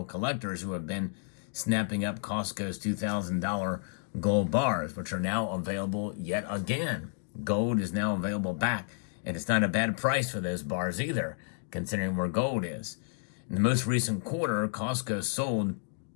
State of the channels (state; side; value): silent; right; digital silence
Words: collectors who have been snapping up Costco's $2,000 gold bars, which are now available yet again. Gold is now available back, and it's not a bad price for those bars either, considering where gold is. In the most recent quarter, Costco sold